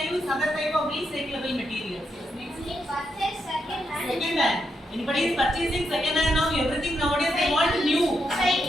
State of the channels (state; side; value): normal; both; correlation 0.82